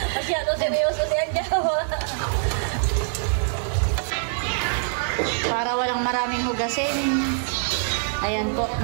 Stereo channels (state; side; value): silent; left; digital silence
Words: Masyado seryoso si Adjaw. Para walang maraming hugasin. Ayan po,